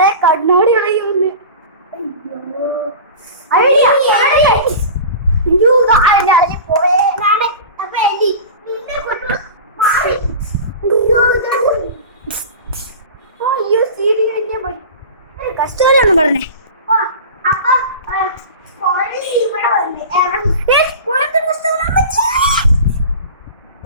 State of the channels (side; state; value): both; inverted; correlation -0.34